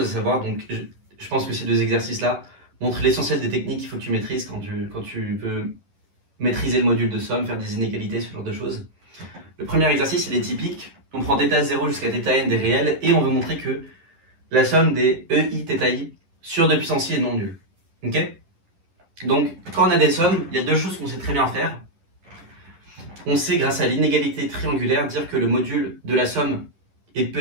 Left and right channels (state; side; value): late; left; 10 ms